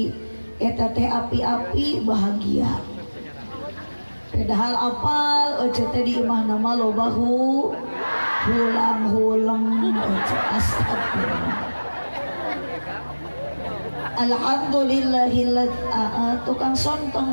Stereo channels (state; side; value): inverted; both; correlation -1.00